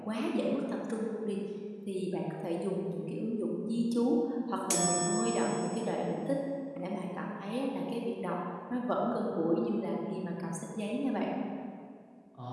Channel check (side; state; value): both; identical; correlation 1.00